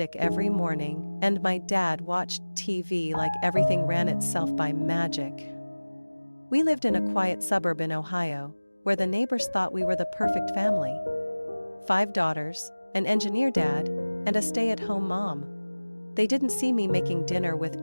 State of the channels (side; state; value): both; inverted; correlation -1.00